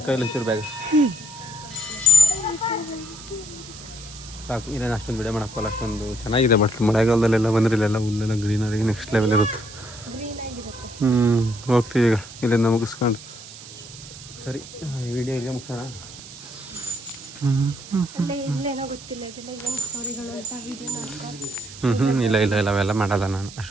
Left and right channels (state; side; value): noise; right; hiss, 16 dB below the sound